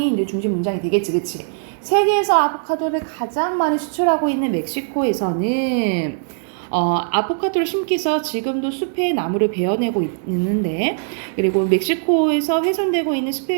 이제 중심 문장이 되겠지, 그치? 세계에서 아보카도를 가장 많이 수출하고 있는 멕시코에서는 아보카도를 심기 위해서 지금도 숲의 나무를 베어내고 있는데 그리고 멕시코에서 훼손되고 있는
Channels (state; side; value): silent; left; digital silence